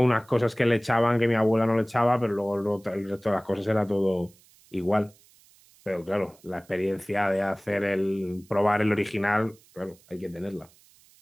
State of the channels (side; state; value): right; noise; hiss, 29 dB below the sound